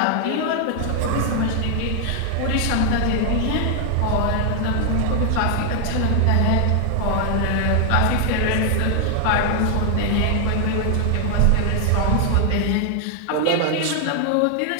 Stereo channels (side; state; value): both; different; correlation 0.00